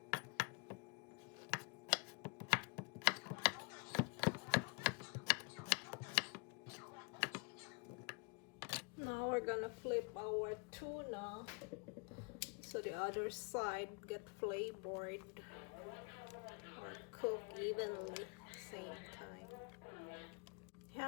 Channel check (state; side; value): quieter; right; 33.7 dB